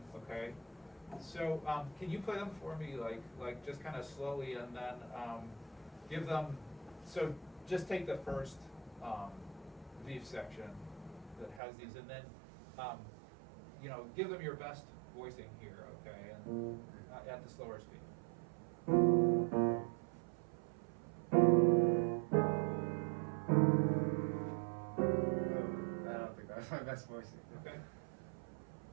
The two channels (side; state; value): left; drops out; at 11.6 s